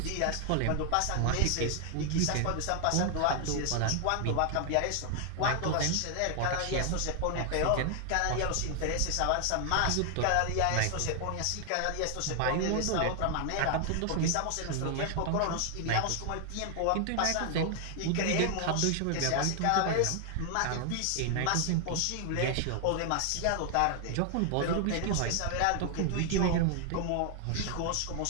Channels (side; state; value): both; different; correlation 0.00